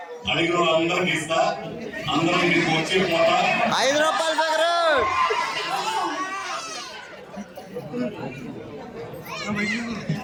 అడిగిన వాళ్ళందరికీ ఇస్తా, అందరూ మీకు వచ్చి పోతా. 5 రూపాయలు దగ్గర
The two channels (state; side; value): identical; both; correlation 1.00